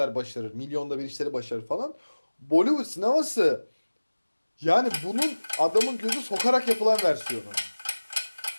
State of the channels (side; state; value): both; inverted; correlation -1.00